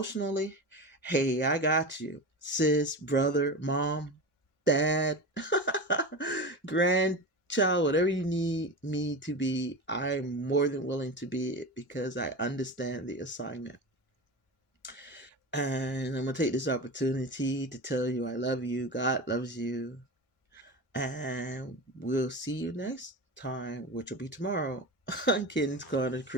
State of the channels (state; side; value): normal; both; correlation 0.26